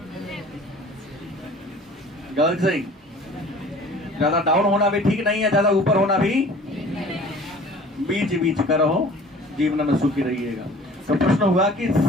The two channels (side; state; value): both; normal; correlation 0.47